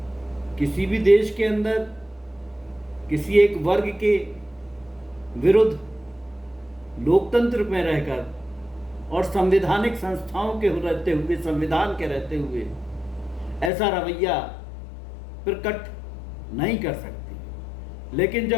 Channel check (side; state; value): right; drops out; at 13.7 s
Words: किसी भी देश के अंदर किसी एक वर्ग के विरुद्ध लोकतंत्र में रहकर और संवैधानिक संस्थाओं के रहते हुए, संविधान के रहते हुए ऐसा रवैया प्रकट नहीं कर सकती। लेकिन